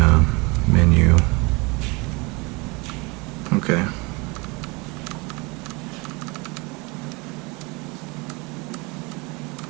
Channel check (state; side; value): quieter; left; 27.0 dB